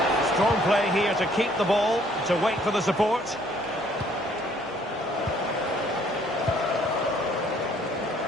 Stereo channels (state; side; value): normal; both; correlation 0.62